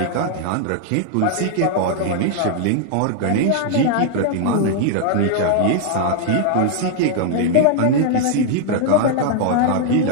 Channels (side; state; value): both; different; correlation 0.00